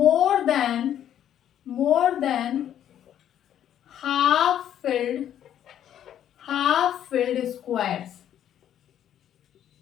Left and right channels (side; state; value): right; quieter; 10.5 dB